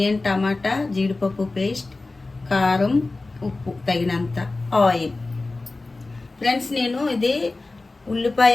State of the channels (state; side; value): quieter; right; 3.3 dB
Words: టమాటా, జీడిపప్పు పేస్ట్, కారం, ఉప్పు తగినంత, ఆయిల్. ఫ్రెండ్స్, నేను ఇది